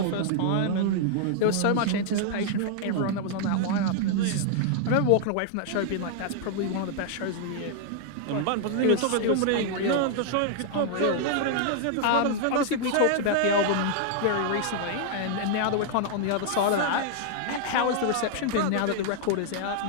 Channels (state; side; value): different; both; correlation -0.01